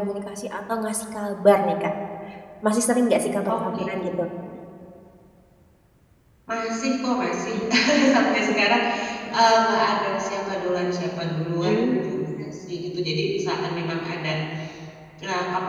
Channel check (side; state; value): both; identical; correlation 1.00